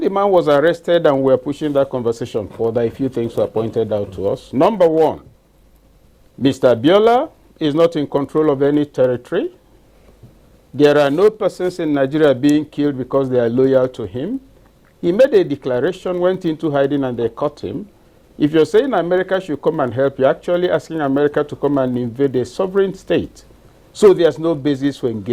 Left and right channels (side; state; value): both; identical; correlation 1.00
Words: man was arrested and we were pushing that conversation further, a few things were pointed out to us. Number one, Mr. Abiola is not in control of any territory. There are no persons in Nigeria being killed because they are loyal to him. He made a declaration, went into hiding, and they caught him. If you're saying America should come and help, you're actually asking America to come and invade a sovereign state. So there's no basis for